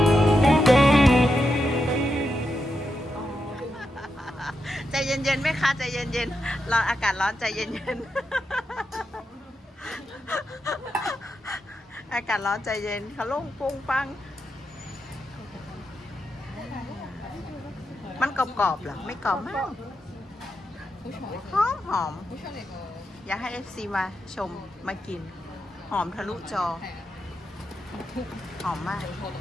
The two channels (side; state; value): both; normal; correlation 0.85